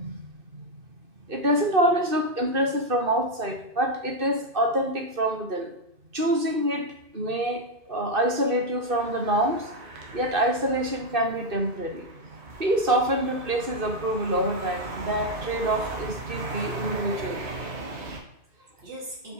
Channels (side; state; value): left; late; 2.6 ms